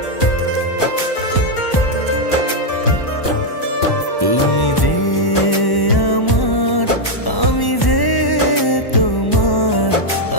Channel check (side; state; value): right; late; 1.1 ms